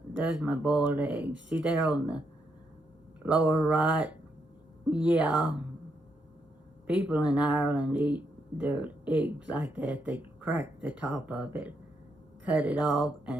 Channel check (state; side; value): normal; both; correlation 0.79